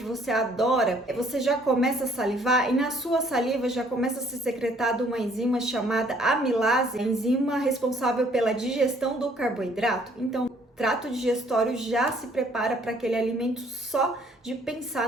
você adora, você já começa a salivar e na sua saliva já começa a ser secretada uma enzima chamada amilase, a enzima responsável pela digestão do carboidrato? Então, o trato digestório já se prepara para aquele alimento só de pensar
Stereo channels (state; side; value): normal; both; correlation 0.62